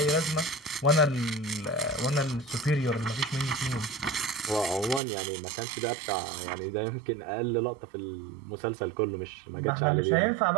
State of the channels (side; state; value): left; drops out; at 5.0 s